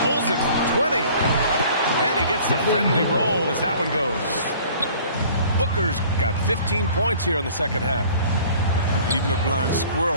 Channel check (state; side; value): inverted; both; correlation -0.50